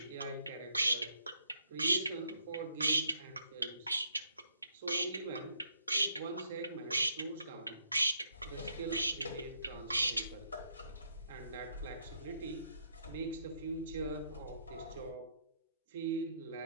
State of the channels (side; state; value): both; inverted; correlation -0.72